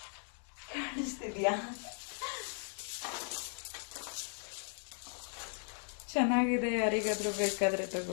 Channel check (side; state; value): right; silent; 53 dB below the other